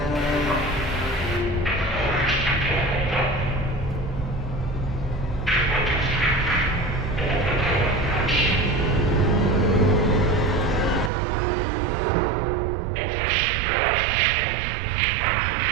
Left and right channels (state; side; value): drops out; left; at 11.1 s